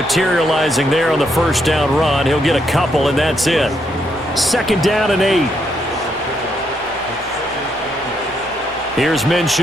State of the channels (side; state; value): both; normal; correlation 0.77